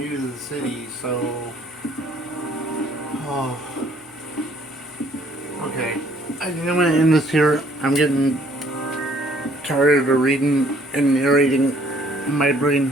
to the city, so... Oh. Okay. I think I'm going to end this here. I'm getting tired of reading and narrating. My brain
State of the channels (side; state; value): both; normal; correlation 0.61